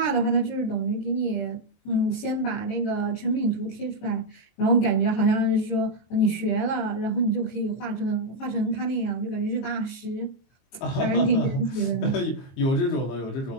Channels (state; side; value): late; right; 22 ms